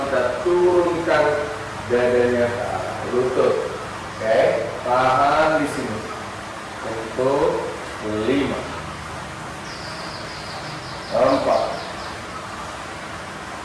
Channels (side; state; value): both; identical; correlation 1.00